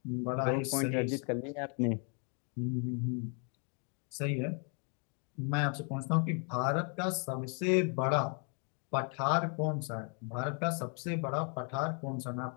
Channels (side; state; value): right; quieter; 39.4 dB